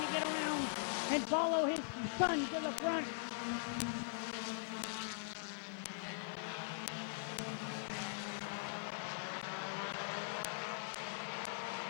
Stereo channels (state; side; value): silent; right; digital silence